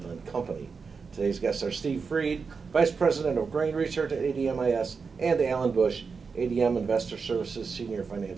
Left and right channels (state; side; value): quieter; left; 5.2 dB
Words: Company. Today's guests are Steve Freed, Vice President of Grain Research at ADMIS, and Alan Bush, ADM Investor Services Senior